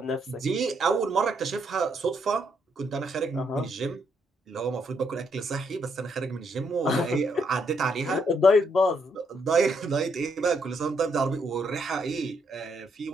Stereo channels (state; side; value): normal; both; correlation 0.75